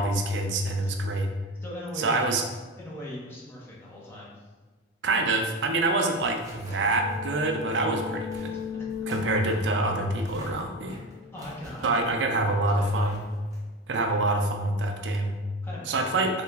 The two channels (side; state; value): both; normal; correlation 0.25